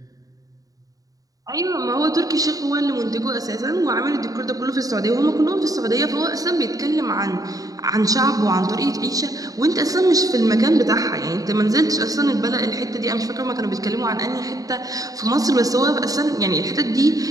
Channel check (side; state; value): left; late; 0.17 ms